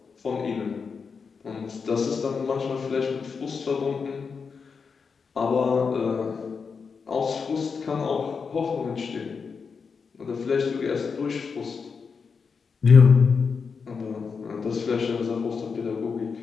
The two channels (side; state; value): right; quieter; 5.5 dB